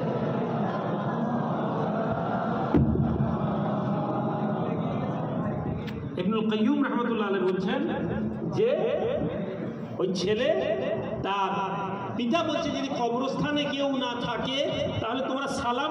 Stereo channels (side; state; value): both; identical; correlation 1.00